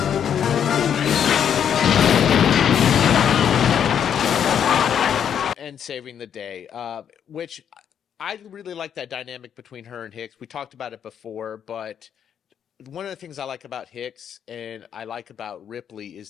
And saving the day, which I really like that dynamic between her and Hicks. We talked about it before, but one of the things I like about Hicks and I like about Ripley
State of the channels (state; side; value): quieter; right; 8.6 dB